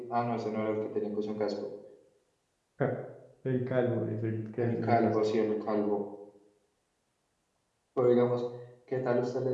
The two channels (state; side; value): identical; both; correlation 1.00